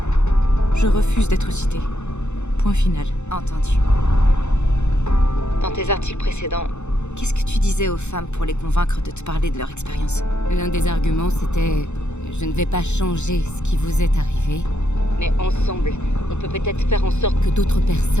Je refuse d'être citée. Point final. Entendu. Dans tes articles précédents, qu'est-ce que tu disais aux femmes pour les convaincre de te parler de leur expérience? L'un des arguments, c'était « Je ne vais pas changer ce qui vous est arrivé, mais ensemble, on peut peut-être faire en sorte que d'autres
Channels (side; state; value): right; late; 0.83 ms